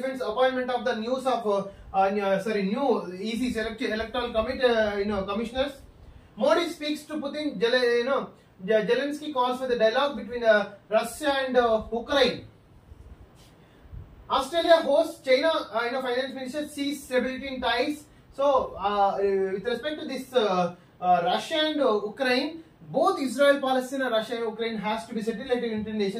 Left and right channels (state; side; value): identical; both; correlation 1.00